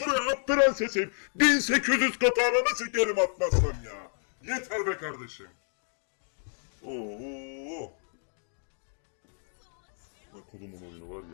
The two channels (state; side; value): silent; right; 58 dB below the other